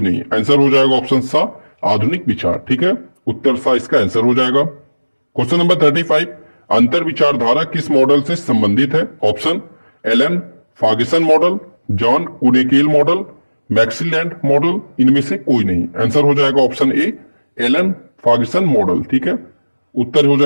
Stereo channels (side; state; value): both; inverted; correlation -1.00